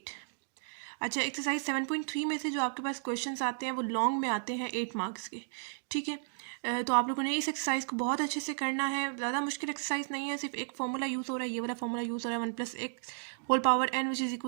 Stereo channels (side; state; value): left; silent; digital silence